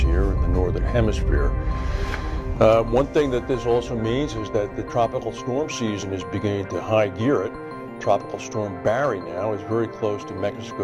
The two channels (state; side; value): identical; both; correlation 1.00